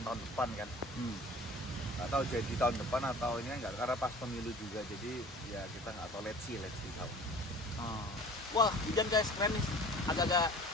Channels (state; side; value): normal; both; correlation 0.45